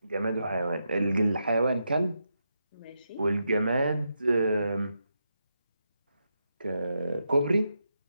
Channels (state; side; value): inverted; both; correlation -0.84